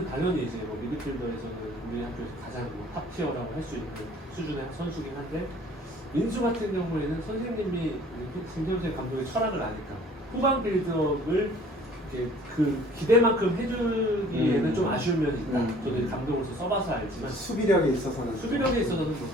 당연히 이제 뭐 미드필더에서는 우리 학교에서 가장 탑 티어라고 할 수 있는 수준의 선수긴 한데 민수 같은 경우에는 선생님이 김태훈 감독의 철학을 아니까 후방 빌드업을 이렇게 그 기대만큼 해주기에는 좀 아쉬운 면이 있다. 저도 이제 감독으로서 써봐서 알지만 수비력에 있어서는 뭐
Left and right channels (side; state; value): both; normal; correlation 0.53